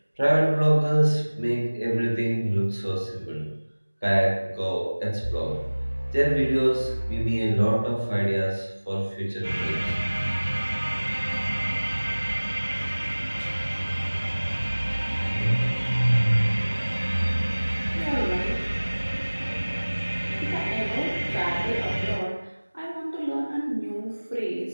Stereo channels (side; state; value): both; inverted; correlation -1.00